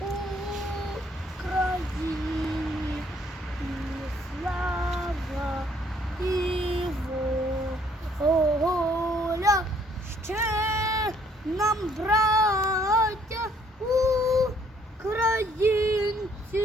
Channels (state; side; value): normal; both; correlation 0.64